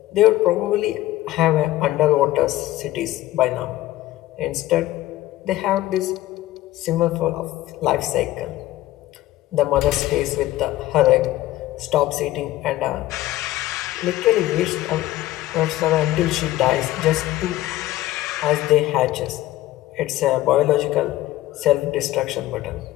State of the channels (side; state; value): right; quieter; 15.5 dB